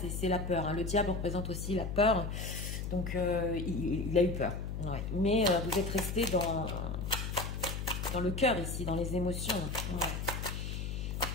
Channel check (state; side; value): noise; left; hum, 4 dB below the sound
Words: la peur. Hein. Le diable représente aussi la peur. Donc, il a eu peur. Ouais. Mais vous êtes resté dans le cœur ici, dans les émotions. Ouais.